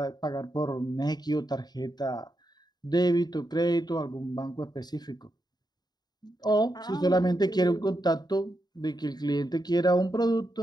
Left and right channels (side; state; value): right; late; 0.20 ms